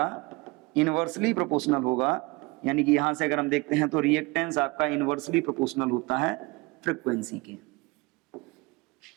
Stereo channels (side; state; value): left; quieter; 24.7 dB